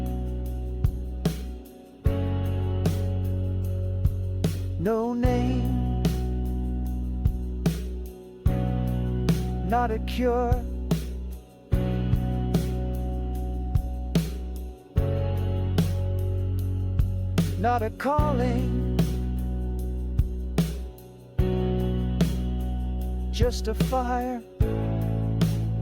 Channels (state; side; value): identical; both; correlation 1.00